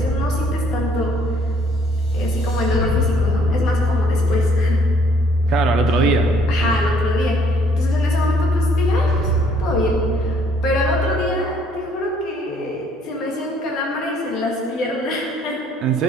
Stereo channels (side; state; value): both; normal; correlation 0.63